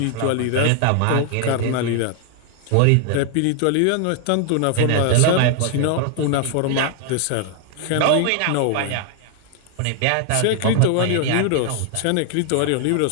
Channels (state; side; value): different; both; correlation 0.00